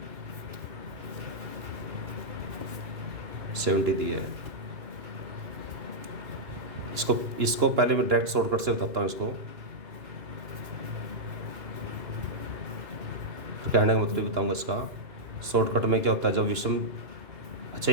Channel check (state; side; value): late; left; 2.9 ms